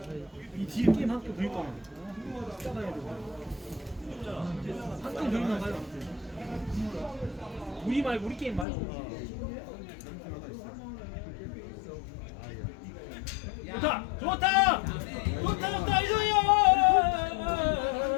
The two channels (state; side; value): drops out; right; at 8.7 s